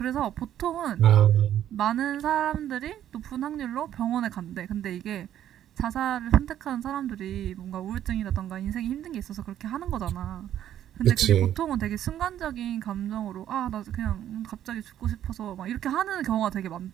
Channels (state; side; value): quieter; left; 11.1 dB